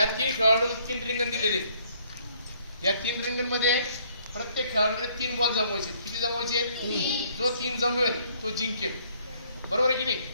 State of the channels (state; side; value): inverted; both; correlation -0.64